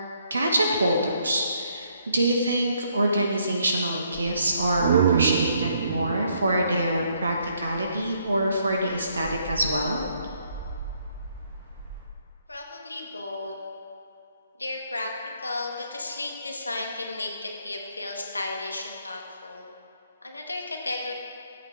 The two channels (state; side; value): inverted; both; correlation -0.70